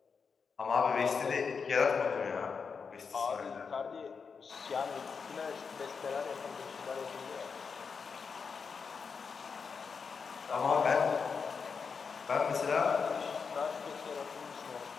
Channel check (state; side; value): quieter; right; 5.6 dB